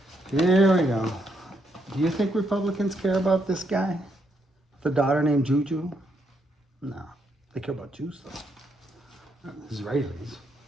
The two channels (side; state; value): both; normal; correlation 0.76